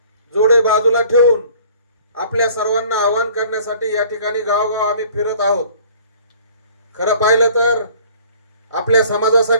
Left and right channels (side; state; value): both; inverted; correlation -0.52